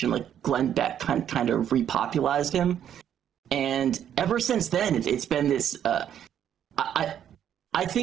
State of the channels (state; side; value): quieter; left; 9.8 dB